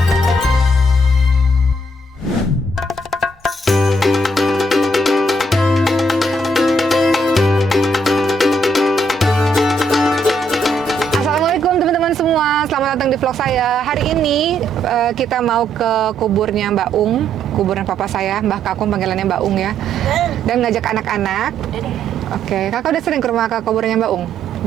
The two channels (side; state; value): both; normal; correlation 0.71